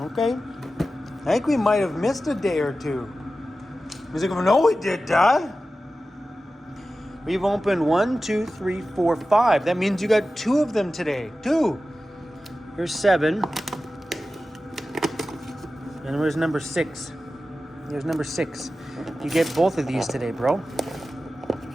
I think we might have missed a day or two. He's like, no, we did, Dad. We've opened 1, 2, 3, 4, 5. That means you got 2 of them today. 2. Here's 7. And where's number 6? Here's number 6. You get both of these today, bro.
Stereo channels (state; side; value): normal; both; correlation 0.94